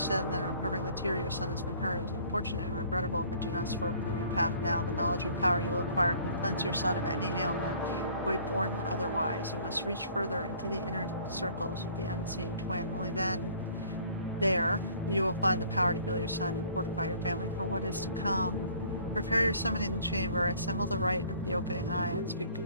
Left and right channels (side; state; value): both; inverted; correlation -0.54